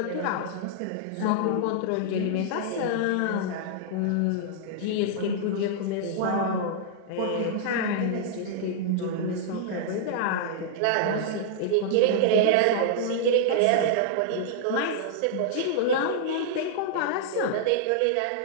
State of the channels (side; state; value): both; different; correlation -0.01